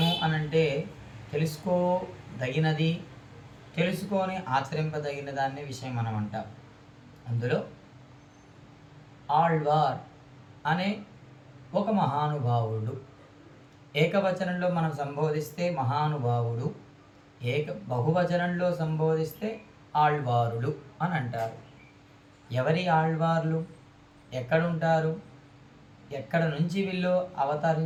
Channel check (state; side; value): identical; both; correlation 1.00